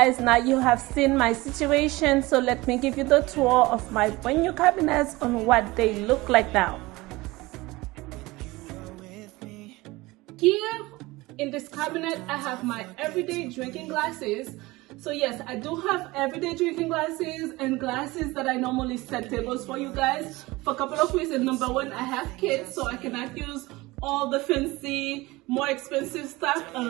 now you have seen my situation, so let me give you the tour of my brand new cabinets on what they look like now. Here in this cabinet, I have my everyday drinking glasses. So yes, I do have everyday drinking glasses and glasses that I normally set tables for you guys for a couple of reasons. Number one, I have kids, so I cannot use all the fancy, more expensive stuff. A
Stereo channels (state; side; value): quieter; left; 21.1 dB